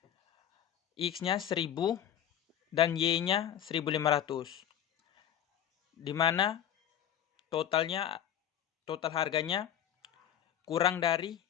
X-nya 1000 dan Y-nya 1500. Di mana total harganya kurang dari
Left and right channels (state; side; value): quieter; right; 10.1 dB